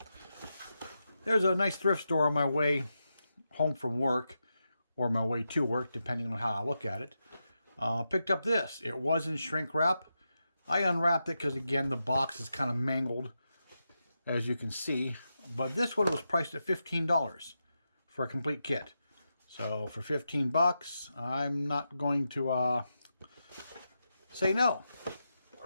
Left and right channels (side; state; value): both; inverted; correlation -0.88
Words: there's a nice thrift store on my way home from work or my way to work, depending on how I look at it. Picked up this. It was in shrink wrap. I unwrapped it because, again, the box is kind of mangled, as you can see. But this one was priced at $15 for a complete kit. So for 15 bucks, I'm not going to say no.